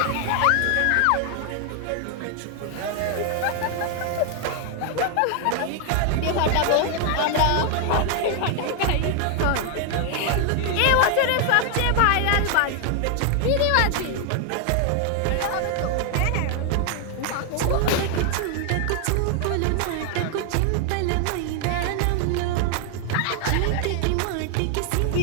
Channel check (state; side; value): different; both; correlation 0.00